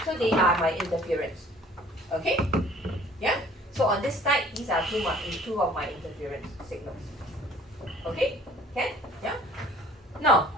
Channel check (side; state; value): both; normal; correlation 0.53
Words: So they are my interference. Okay? Yeah? So on this side, these are two of my interference signals. Okay? Can? Yeah? Now,